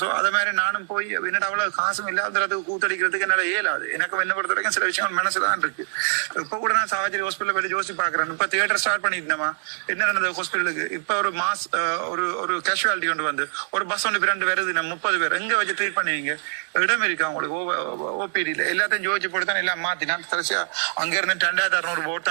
சோ அத மாதிரி நானும் போய் என்னடா அவ்வளவு காசும் இல்லாததுக்கு கூத்தடிக்கிறதுக்கு என்னால இயலாது. எனக்கு என்ன பொறுத்த வரைக்கும் சில விஷயங்கள் மனசுதான் இருக்கு. இப்ப கூட நான் சாவச்சேரி ஹாஸ்பிட்டல் போய் யோசிச்சு பாக்குறேன். இப்ப தியேட்டர் ஸ்டார்ட் பண்ணிருந்தேமா, என்ன நடந்தது ஹாஸ்பிட்டலுக்கு? இப்ப ஒரு மாஸ் ஒரு கேஷுவாலிட்டி கொண்டு வந்து ஒரு பஸ் ஒன்று 2 வருது, நம்ம 30 பேர் எங்க வச்சு ட்ரீட் பண்ணுவீங்க? இடம் இருக்கு அவங்களுக்கு ஓபிடியில? எல்லாத்தையும் ஜோதிச்சு போட்டு தான் எல்லாம் மாத்தி நான் கடைசியா அங்க இருந்து 2600 ஓட்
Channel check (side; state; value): left; silent; digital silence